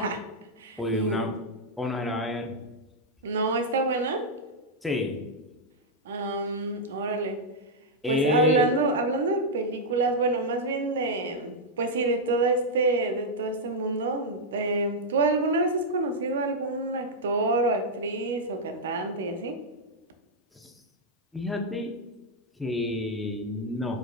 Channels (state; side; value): normal; both; correlation -0.04